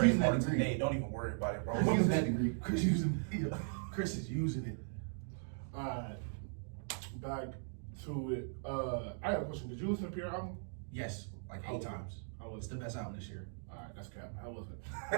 that trademark degree. today. Don't even worry about it, bro. Chris using that degree. Chris is using it. Alright, back to it. I got a question. Did you listen to Pierre album? Yes, like 8 times. It's the best album this year. Alright, that's cap. How was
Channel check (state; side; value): silent; left; digital silence